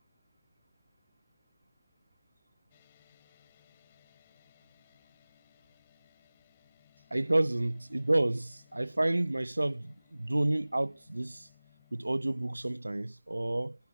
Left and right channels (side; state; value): both; inverted; correlation -1.00